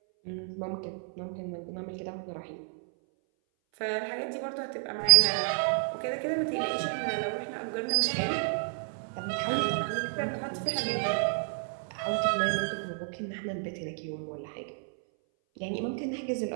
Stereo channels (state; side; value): silent; left; 57 dB below the other